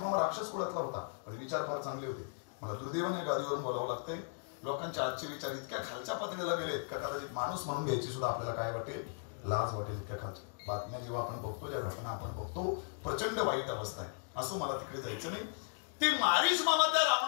मामा राक्षस कुळातला होता, पण विचार फार चांगले होते. मला दुर्दैवाने गादीवरून बोलावं लागतंय, लोकांचे आजचे विचार इतक्या खालच्या पातळीला गेलेत का कदाचित माणूस म्हणून घ्यायची सुद्धा आपल्याला काय वाटेल, लाज वाटेल. इतक्या खालच्या बातम्या जेव्हा आपण बघतो, ज्या घटना आपण बघतो, प्रचंड वाईट अवस्था आहे. असं मला तिकडे जायचं नाही. ते मारीच मामा त्या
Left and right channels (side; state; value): right; silent; digital silence